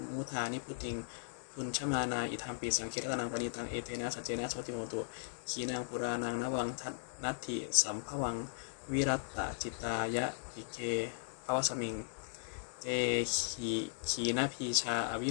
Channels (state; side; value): silent; right; 53 dB below the other